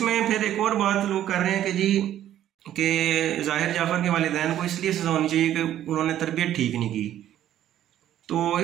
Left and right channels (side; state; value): left; quieter; 11.8 dB